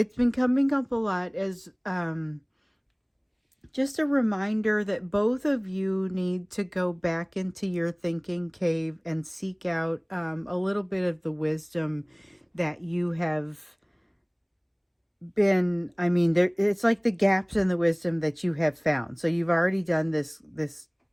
been coming up a lot as just a reminder that both of you need to go back into your thinking cave and seek out a little bit of the wisdom that you have been... I mean, it's like the gaps in the wisdom that you have found. So you've already done this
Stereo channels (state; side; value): identical; both; correlation 1.00